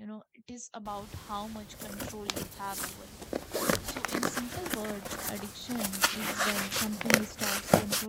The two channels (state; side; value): identical; both; correlation 1.00